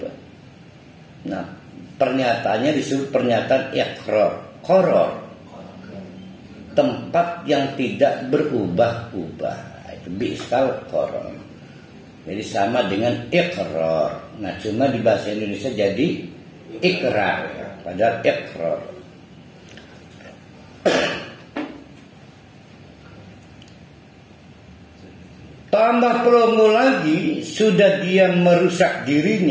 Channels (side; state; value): both; identical; correlation 1.00